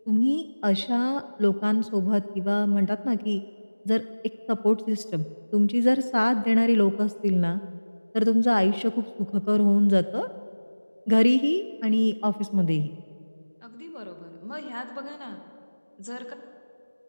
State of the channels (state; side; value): inverted; both; correlation -1.00